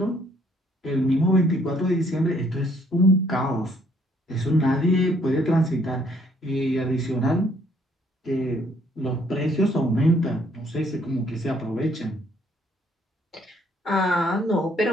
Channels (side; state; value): both; normal; correlation 0.65